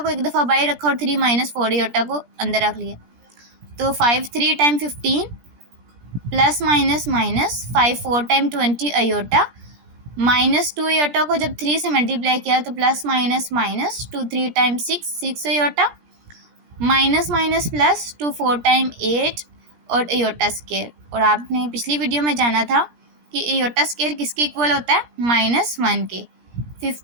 एक दफ़ा बाहर रखा और 3 माइनस 4 एयोटा को अंदर रख लिया। तो 5 3 time 15 plus minus minus 5 4 time 20 aorta, minus 2 aorta को जब 3 से मल्टीप्लाई किया तो plus minus minus 2 3 time 6 aorta, minus minus plus 2 4 time 8 और एयोटा स्केयर। और आपने पिछली वीडियो में जाना था कि एयोटा स्केयर किसके इक्वल होता है, -1 के।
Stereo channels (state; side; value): late; left; 17 ms